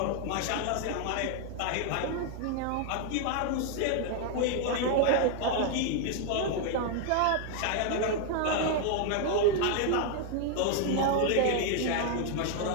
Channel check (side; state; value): both; different; correlation 0.00